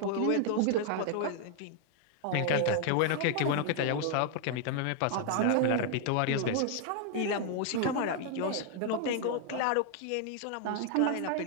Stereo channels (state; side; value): different; both; correlation 0.00